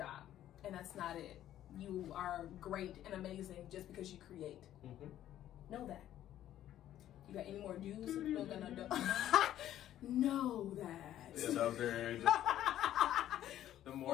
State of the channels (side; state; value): right; quieter; 12.2 dB